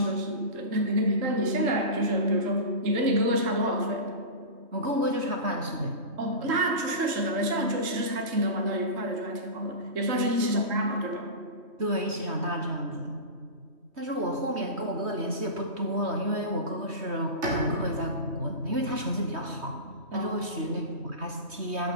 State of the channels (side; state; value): left; late; 3.1 ms